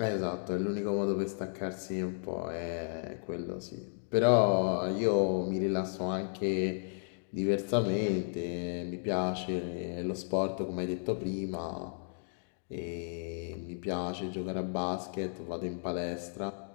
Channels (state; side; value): silent; right; digital silence